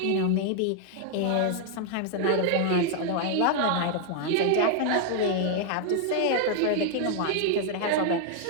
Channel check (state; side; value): different; both; correlation 0.00